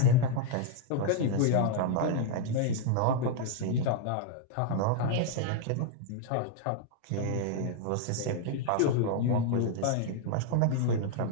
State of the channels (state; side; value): different; both; correlation 0.00